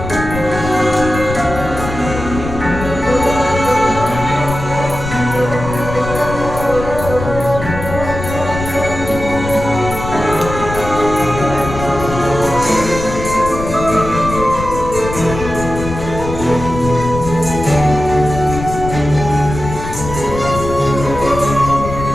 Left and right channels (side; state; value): left; noise; rumble, 7 dB below the sound